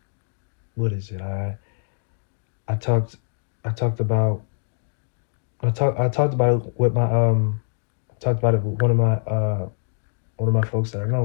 what is it? I talked I talked about I talked about it with my talked about it with one of my folks that I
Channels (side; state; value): right; silent; digital silence